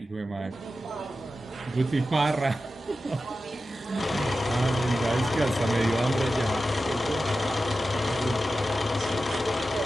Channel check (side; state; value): both; normal; correlation 0.93